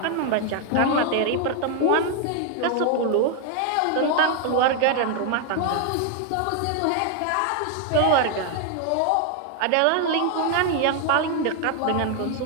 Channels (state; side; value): different; both; correlation 0.00